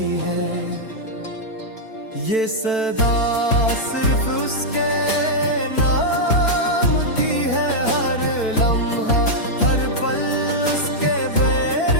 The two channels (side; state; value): right; late; 4.5 ms